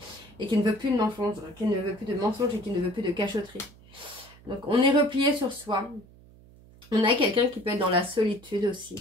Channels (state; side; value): noise; right; hum, 24 dB below the sound